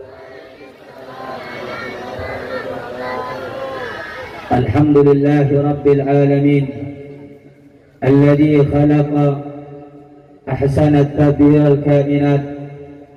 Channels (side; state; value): both; identical; correlation 1.00